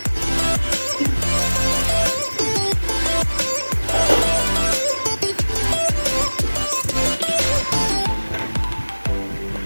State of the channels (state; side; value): inverted; both; correlation -1.00